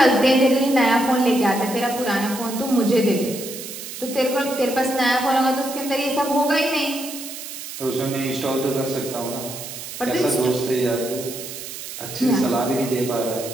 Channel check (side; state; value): right; noise; hiss, 10 dB below the sound